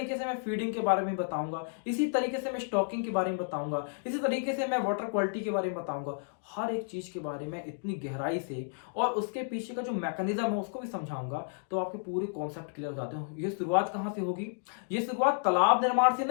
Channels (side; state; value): right; silent; digital silence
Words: से मैं फीडिंग के बारे में बताऊंगा, इसी तरीके से मैं स्टॉकिंग के बारे में बताऊंगा, इसी तरीके से मैं वाटर क्वालिटी के बारे में बताऊंगा, हर एक चीज के बारे में इतनी गहराई से, और उसके पीछे का जो मैकेनिज्म है उसको भी समझाऊंगा। तो आपके पूरे कॉन्सेप्ट क्लियर हो जाते हैं। ये शुरुआत कहां से होगी, ये शुरुआत तालाब निर्माण से